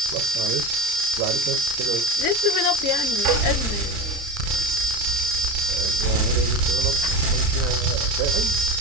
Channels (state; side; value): late; left; 30 ms